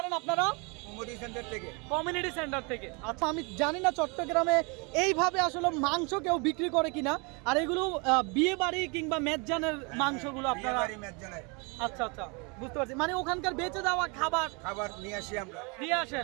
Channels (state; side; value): quieter; left; 31.2 dB